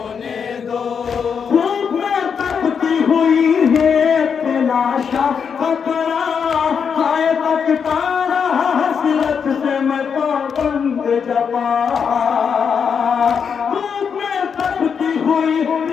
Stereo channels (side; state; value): right; quieter; 6.6 dB